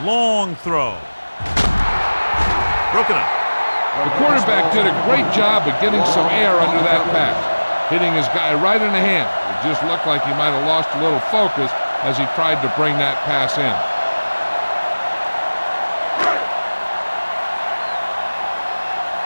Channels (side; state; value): both; inverted; correlation -1.00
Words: Long throw. Broken up. The quarterback did a great job of getting some air under that pass, hitting his guy right in the hand. It just looked like he might have lost a little focus as he tried to bring that pass in.